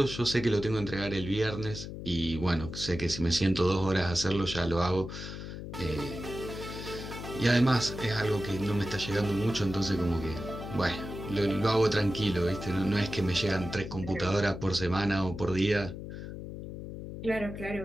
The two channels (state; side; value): noise; left; hum, 9 dB below the sound